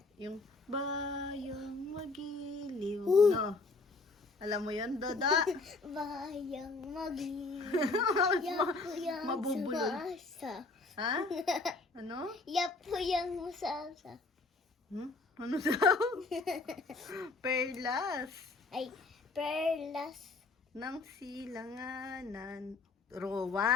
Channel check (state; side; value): quieter; right; 3.6 dB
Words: Yung bayang magiliw, no? Alam mo yun, Doda? Bayang magiliw. Yapuyang Mabubulol. sumasa. Ha? Ano? Yapuyang musasa. Ano daw? Perlas Ay, perlas. ng silanganan.